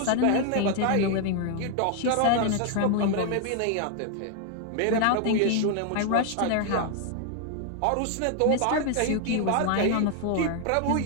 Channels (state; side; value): different; both; correlation 0.00